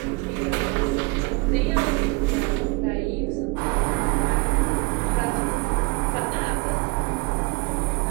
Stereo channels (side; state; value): left; quieter; 26.6 dB